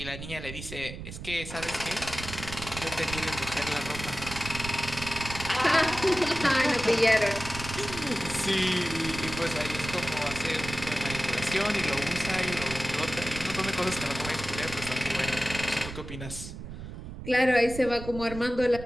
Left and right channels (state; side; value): noise; right; rumble, 10 dB below the sound